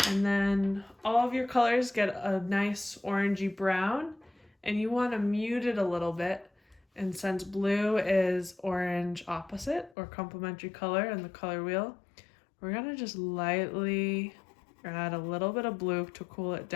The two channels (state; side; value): drops out; right; at 10.0 s